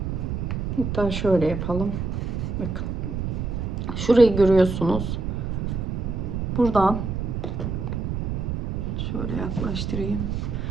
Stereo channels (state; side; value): noise; right; rumble, 2 dB below the sound